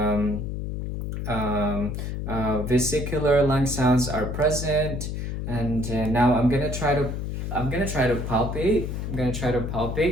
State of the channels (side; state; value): left; noise; hum, 4 dB below the sound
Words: vesicular lung sounds are present. And now I'm gonna try to palpate. I'm gonna try to